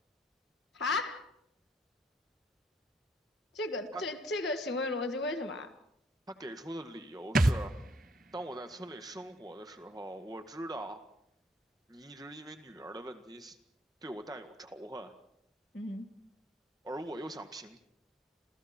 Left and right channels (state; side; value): normal; both; correlation 0.65